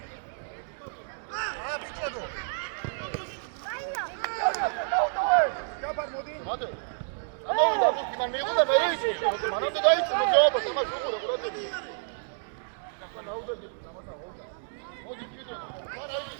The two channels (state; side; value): silent; left; digital silence